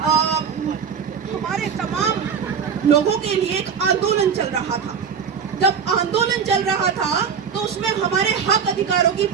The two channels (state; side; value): quieter; left; 6.8 dB